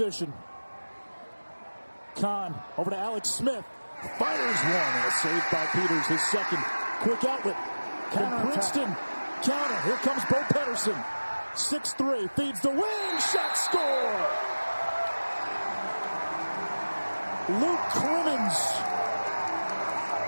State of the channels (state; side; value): inverted; both; correlation -1.00